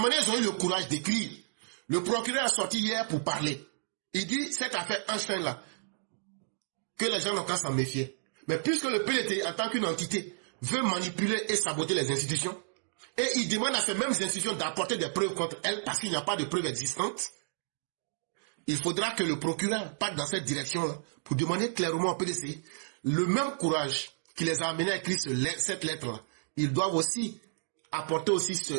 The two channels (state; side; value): silent; left; digital silence